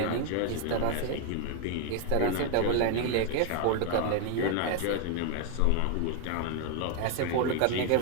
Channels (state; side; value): different; both; correlation 0.01